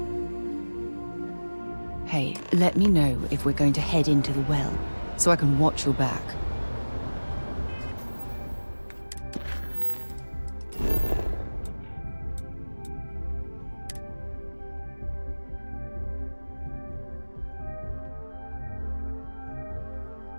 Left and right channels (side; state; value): both; inverted; correlation -1.00